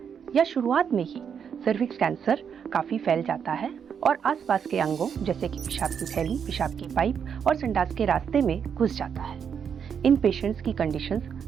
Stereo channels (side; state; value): left; quieter; 7.4 dB